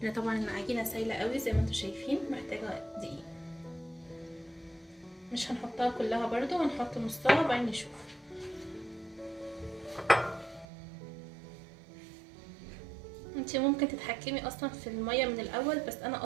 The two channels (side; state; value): left; drops out; at 10.7 s